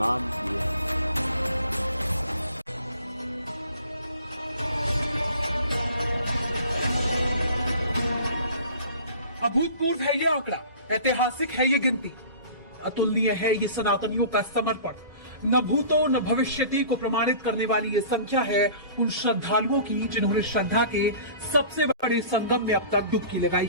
किए। अभूतपूर्व है ये आंकड़ा, ऐतिहासिक है ये गिनती, अतुलनीय है ये सनातनियों का समर्पण। न भूतो न भविष्यति को प्रमाणित करने वाली ये संख्या है उन श्रद्धालुओं की जिन्होंने श्रद्धा के सबसे बड़े संगम में अब तक डुबकी लगाई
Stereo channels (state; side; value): inverted; both; correlation -0.44